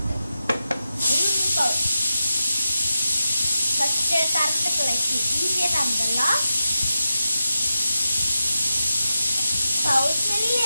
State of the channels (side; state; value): both; inverted; correlation -0.90